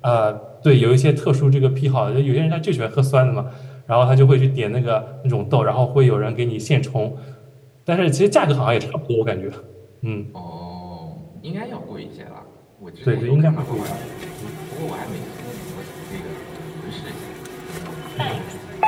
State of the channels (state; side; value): identical; both; correlation 1.00